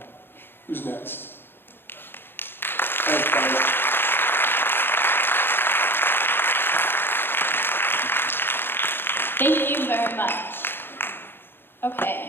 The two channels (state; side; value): late; right; 0.10 ms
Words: Who's next? Thanks, guys. Thank you very much.